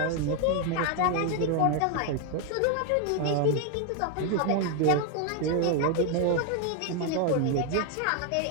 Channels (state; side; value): different; both; correlation 0.01